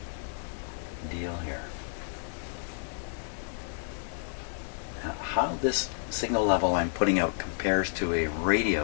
deal here. Now, how this signal level I'm putting out compares to a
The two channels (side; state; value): right; silent; 57 dB below the other